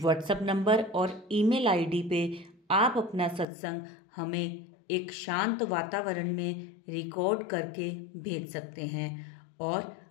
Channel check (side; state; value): right; drops out; at 3.5 s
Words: नंबर और ईमेल आईडी पे आप अपना सत्संग हमें एक शांत वातावरण में रिकॉर्ड करके भेज सकते हैं। और